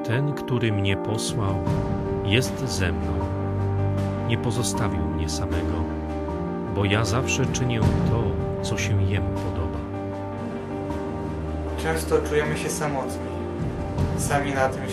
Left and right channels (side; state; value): both; identical; correlation 1.00